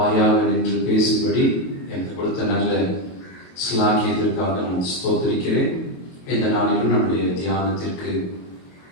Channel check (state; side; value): late; right; 22 ms